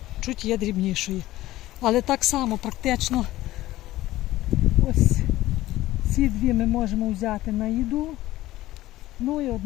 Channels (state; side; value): quieter; right; 16.1 dB